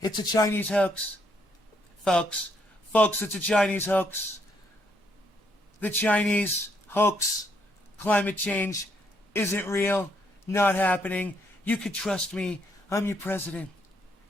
It's a Chinese hoax. Folks, it's a Chinese hoax. The Chinese hoax, climate change, isn't real, not happening. You could trust me. I'm your president.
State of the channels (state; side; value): normal; both; correlation 0.73